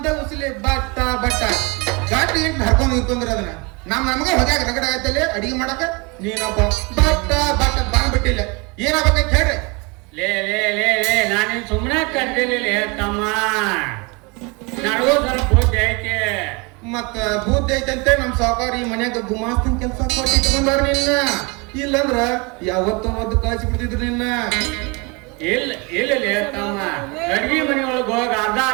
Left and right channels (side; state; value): left; quieter; 28.6 dB